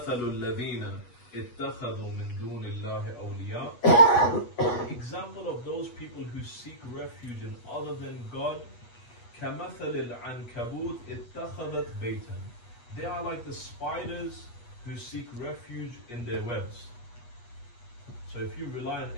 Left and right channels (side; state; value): right; late; 8.3 ms